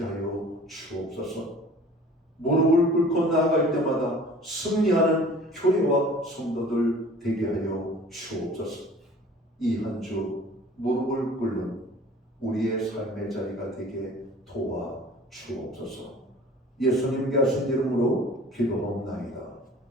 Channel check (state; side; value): normal; both; correlation 0.46